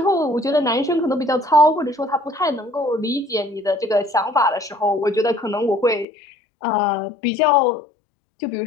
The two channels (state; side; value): drops out; right; at 6.1 s